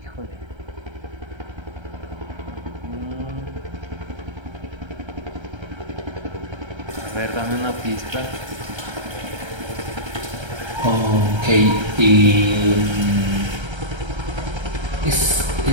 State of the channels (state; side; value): late; left; 1.3 ms